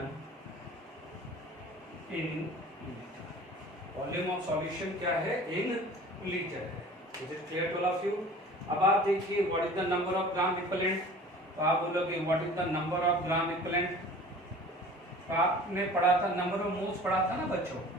in volume of solution क्या है, इन लीटर है। Is it clear to all of you? अब आप देखिए what is the number of gram equivalent, तो आप बोलोगे what is the number of gram equivalent. तो आपने पढ़ा था नंबर ऑफ मोल्स, पढ़ा था ना बच्चों।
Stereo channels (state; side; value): normal; both; correlation 0.44